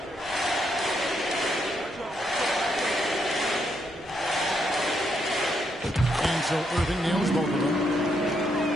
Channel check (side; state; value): both; normal; correlation 0.77